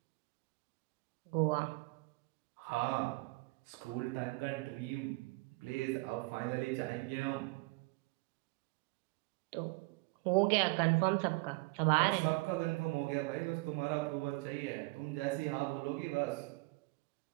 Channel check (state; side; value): quieter; left; 25.4 dB